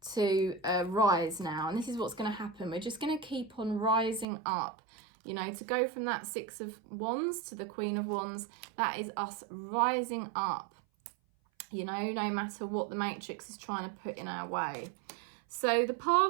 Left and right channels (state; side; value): drops out; left; at 4.2 s